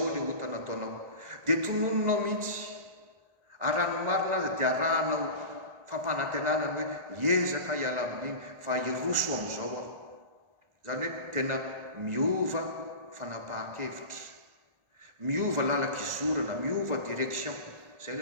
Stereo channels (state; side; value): late; left; 1.4 ms